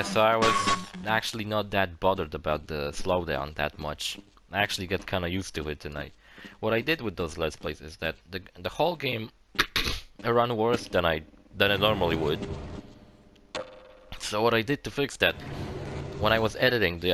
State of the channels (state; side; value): identical; both; correlation 1.00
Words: so I was actually not that bothered about the slowdown that much. I actually got kinda used to it, and what I did with those Let's Plays is that the whole game run worse than I normally would. So what I did to fix that, when I was editing the